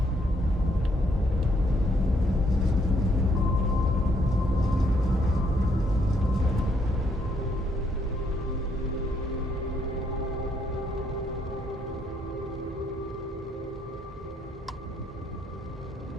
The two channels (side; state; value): both; normal; correlation 0.71